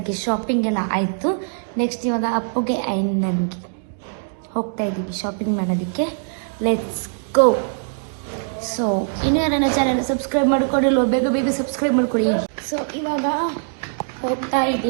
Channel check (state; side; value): silent; left; digital silence